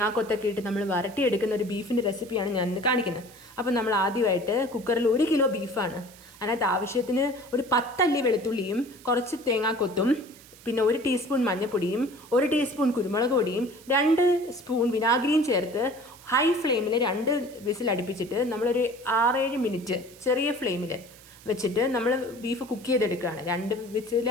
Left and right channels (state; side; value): noise; right; hiss, 22 dB below the sound